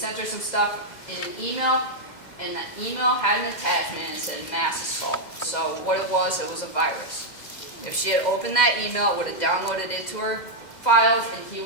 her some stuff in an email, and that email had an attachment and it said mass assault. So what it was a virus. If she had opened that email, it would have downloaded into her files, and he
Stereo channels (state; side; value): late; right; 2.0 ms